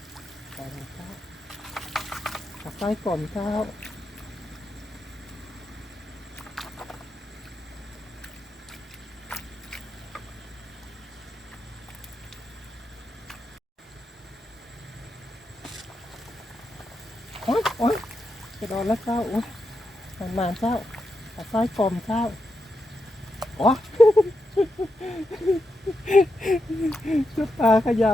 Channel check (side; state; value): both; normal; correlation 0.85